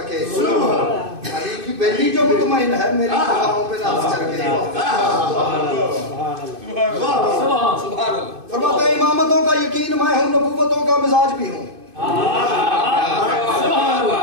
کے, علی کی بیٹی جو مطمئن ہے میری وفاؤں پہ ناز کر کے. فرماتے ہیں امامتوں کا یقین میں ہوں, نبوتوں کا مزاج بھی ہوں.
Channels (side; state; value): left; late; 2.5 ms